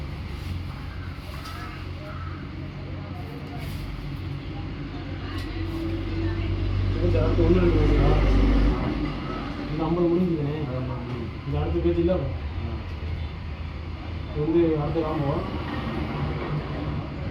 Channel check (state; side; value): identical; both; correlation 1.00